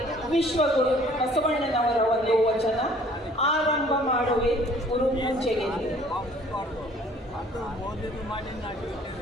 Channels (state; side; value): normal; both; correlation 0.55